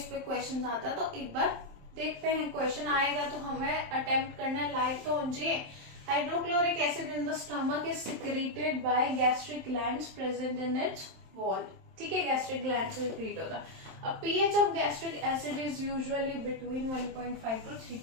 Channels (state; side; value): late; left; 27 ms